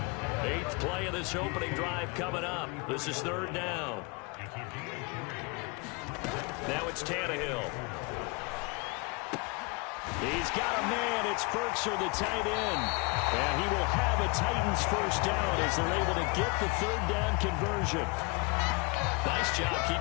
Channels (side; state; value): right; quieter; 29.2 dB